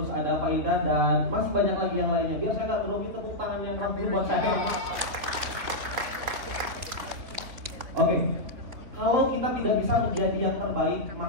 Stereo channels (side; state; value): left; late; 3.6 ms